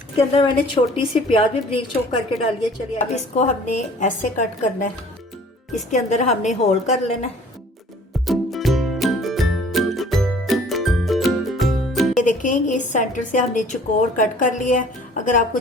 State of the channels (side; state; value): both; normal; correlation 0.51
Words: अंदर मैंने छोटी सी प्याज भी बारीक चॉप करके डाली है। चलिए अब इसको हमने ऐसे कट करना है, इसके अंदर हमने होल कर लेना है। ये देखें, इस सेंटर से हमने चौकोर कट कर लिया है। अगर आपको